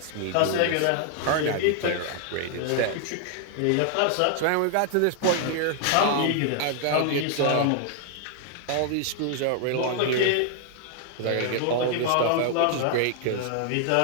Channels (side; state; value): both; different; correlation 0.00